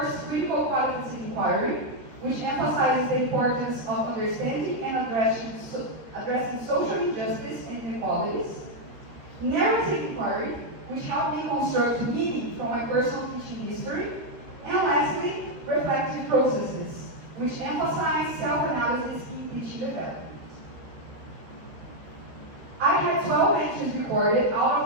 Critical Qualitative inquiry, which emphasizes the importance of understanding and addressing social injustice and inequalities. Narrative inquiry, which helped me construct meaning from my personal teaching history. And lastly, reflective processes, which emphasize self-analysis in teaching development. I had 12 entries recorded.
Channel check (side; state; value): left; late; 13 ms